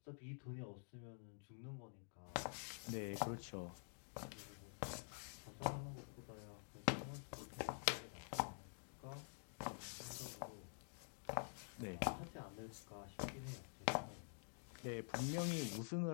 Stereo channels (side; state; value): right; silent; digital silence